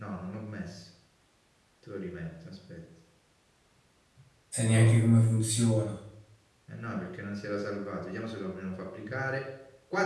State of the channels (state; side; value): identical; both; correlation 1.00